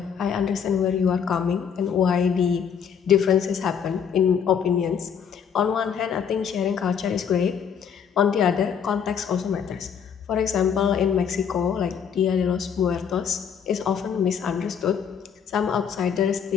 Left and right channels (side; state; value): right; quieter; 7.4 dB